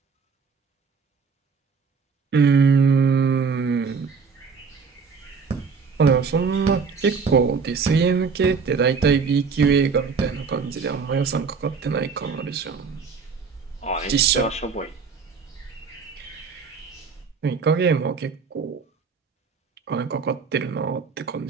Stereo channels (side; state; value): left; quieter; 5.4 dB